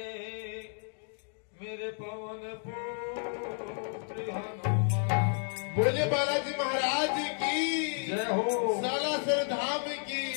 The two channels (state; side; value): silent; right; 57 dB below the other